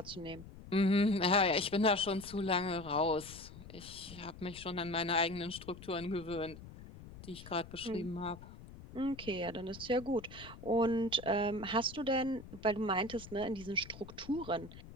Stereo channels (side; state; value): left; noise; rumble, 16 dB below the sound